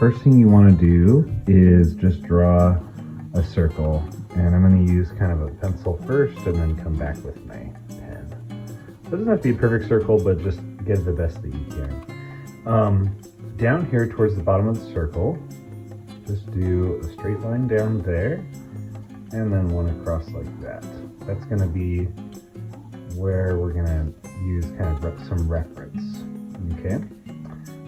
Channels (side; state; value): both; identical; correlation 1.00